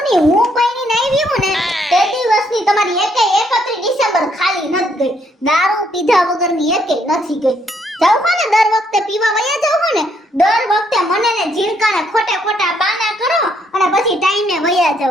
હું કોઈની નહીં વીવું ને તે દિવસની તમારી 31 ડિસેમ્બર ખાલી નથી ગઈ. દારૂ પીધા વગરની એકેય નથી ગઈ. જાવ હો ને દર વખતે પીવા વયા જાવ હો ને દર વખતે મને ને ઝીણકાને ખોટા બાના કરો અને પછી ટાઈમે વયા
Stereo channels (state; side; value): normal; both; correlation 0.71